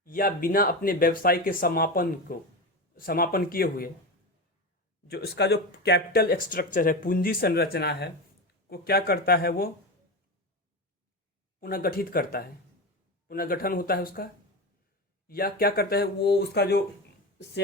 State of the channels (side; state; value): both; normal; correlation 0.21